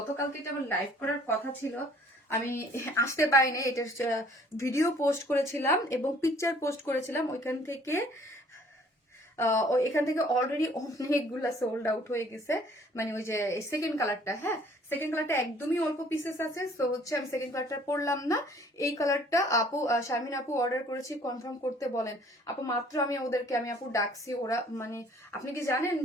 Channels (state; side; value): normal; both; correlation 0.56